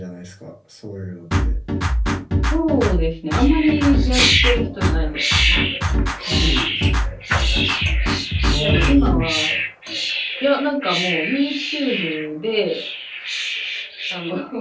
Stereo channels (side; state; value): both; identical; correlation 1.00